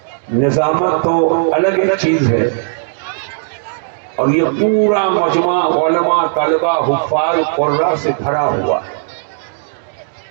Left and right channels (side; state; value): left; silent; digital silence